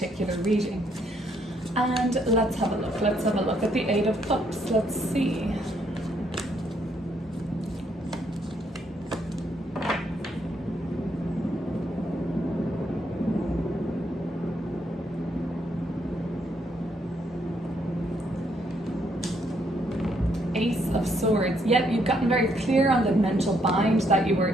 reading. And let's have a look. Let's have a look at the Eight of Cups. Let's see. Ace of Swords. Yep, you've gotten very clear on the mental bind that you were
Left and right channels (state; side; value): normal; both; correlation 0.72